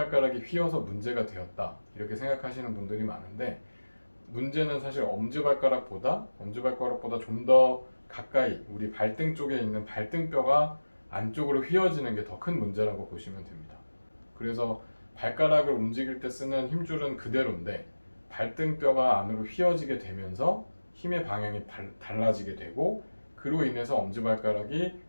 휘어서 문제가 되었다 이렇게 생각하시는 분들이 많은데, 문제는 사실 엄지발가락보다 좀 더 가까이 우리 발등 쪽에 있는 발등뼈가 안쪽으로 휘어지는 게 더 큰 문제라고 보시면 됩니다. 그래서 발가락을 움직일 때 쓰는 힘줄은 그대로인데 발등뼈가 안으로 휘어지게 되면서 힘의 방향이 달라지게 되고, 그로 인해서 엄지발가락이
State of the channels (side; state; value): both; inverted; correlation -1.00